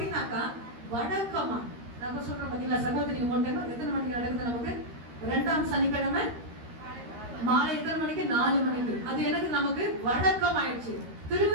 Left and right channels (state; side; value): late; left; 13 ms